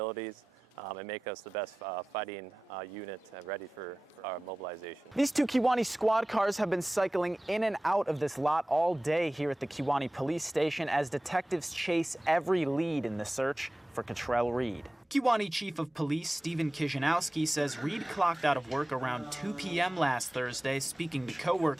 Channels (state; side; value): normal; both; correlation 0.96